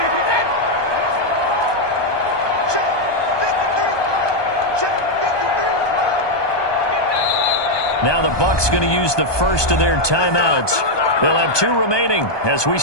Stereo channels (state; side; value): late; right; 1.2 ms